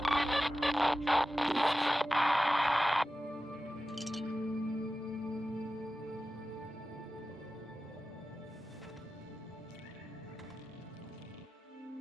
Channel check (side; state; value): both; normal; correlation 0.94